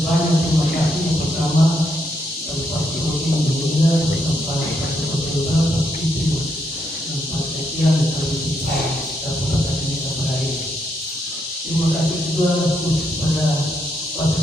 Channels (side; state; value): both; normal; correlation 0.78